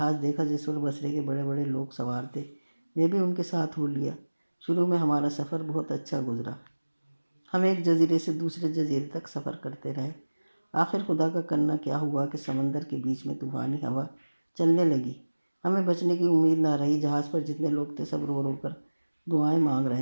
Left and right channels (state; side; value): inverted; both; correlation -1.00